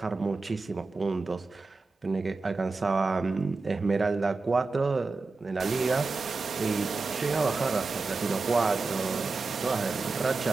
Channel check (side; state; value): left; quieter; 3.9 dB